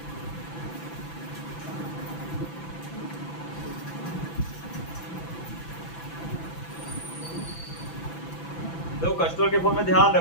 तो कस्टमर के फोन में ध्यान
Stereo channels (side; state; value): right; late; 6.0 ms